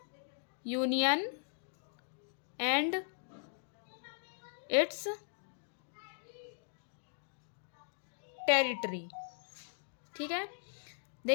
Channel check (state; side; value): silent; right; digital silence